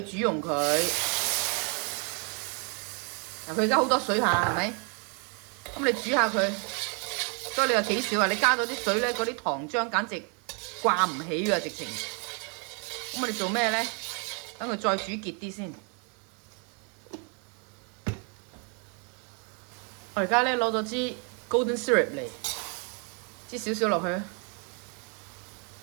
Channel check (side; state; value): left; quieter; 37.1 dB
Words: 去煮溶佢。嗱，佢而家好多水下，係咪？咁你煮下佢，所以你話幾少啊？你加咗啲水咧，嗰啲糖漿簡直掛唔起㗎，直情。咁我哋做咩咧？等佢再煮結啲先。我而家咧攞咗支 golden syrup 嚟，支少少落去，